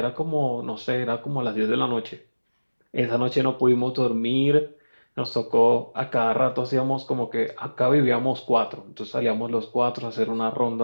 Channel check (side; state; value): both; inverted; correlation -1.00